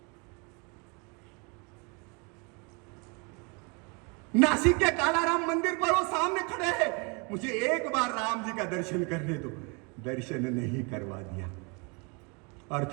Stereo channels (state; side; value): quieter; left; 31.7 dB